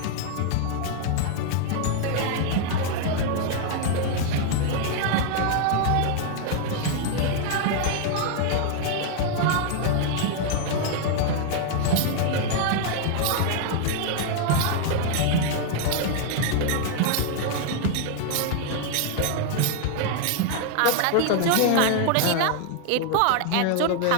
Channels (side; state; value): both; different; correlation 0.00